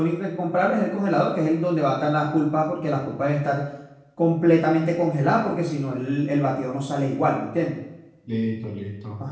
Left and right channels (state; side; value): identical; both; correlation 1.00